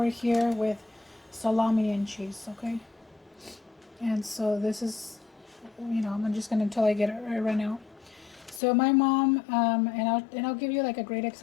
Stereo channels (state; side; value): drops out; right; at 8.6 s